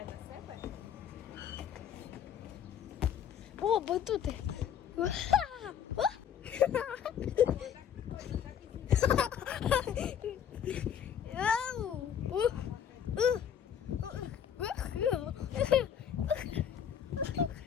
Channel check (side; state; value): right; quieter; 8.7 dB